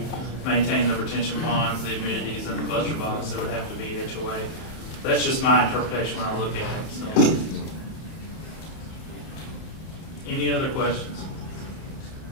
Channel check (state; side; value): late; right; 31 ms